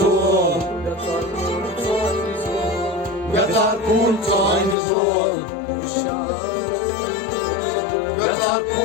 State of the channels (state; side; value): drops out; right; at 4.8 s